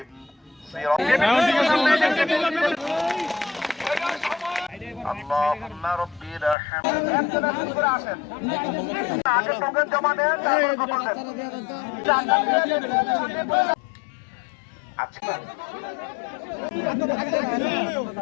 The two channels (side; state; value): right; drops out; at 6.6 s